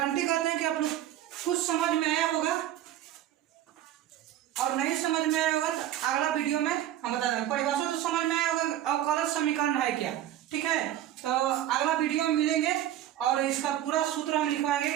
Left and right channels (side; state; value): left; quieter; 12.2 dB